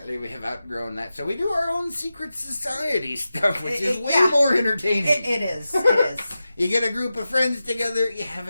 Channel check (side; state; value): both; inverted; correlation -0.92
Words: we have outgrown that. So we do our own secret society stuff, which is way more entertaining. It is. You get a group of friends together, you have